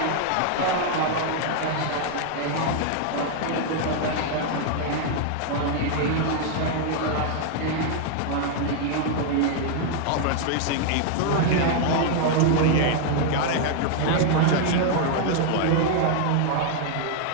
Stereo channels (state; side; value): different; both; correlation 0.00